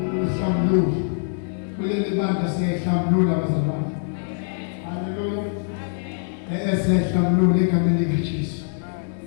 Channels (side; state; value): right; silent; digital silence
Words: kuleli bandla siyayihlambulula abazalwane. Haleluya. Siyayihlambulula egameni likaJesu.